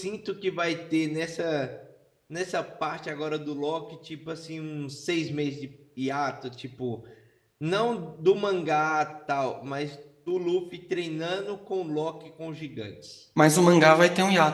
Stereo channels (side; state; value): both; identical; correlation 1.00